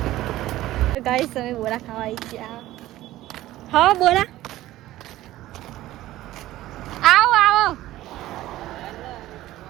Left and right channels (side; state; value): left; quieter; 15.5 dB